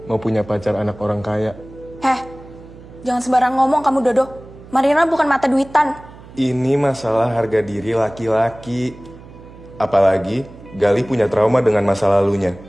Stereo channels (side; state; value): right; noise; hum, 19 dB below the sound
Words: mau punya pacar anak orang kaya. Jangan sembarang ngomong kamu, Dodo. Marlina bukan mata duitan. Ini masalah harga diri laki-laki. Apalagi Galih punya trauma dengan masa lalunya.